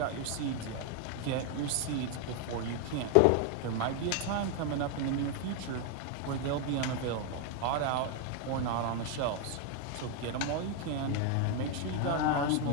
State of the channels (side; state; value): both; different; correlation 0.01